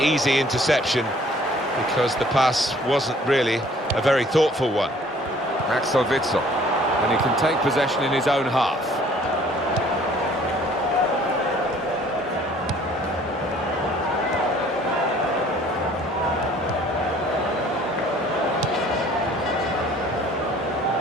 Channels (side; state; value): both; normal; correlation 0.56